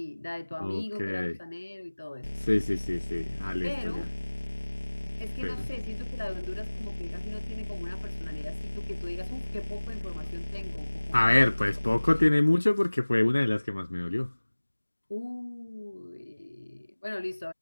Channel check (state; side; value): inverted; both; correlation -1.00